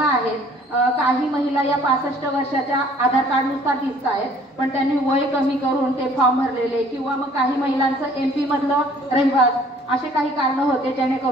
काही महिला या 65 वर्षाच्या आधार कार्ड नुसार दिसत आहेत, पण त्यांनी वय कमी करून ते फॉर्म भरलेले, किंवा मग काही महिलांचं MP मधलं रहिवास, असे काही कारण होते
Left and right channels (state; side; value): normal; both; correlation 0.56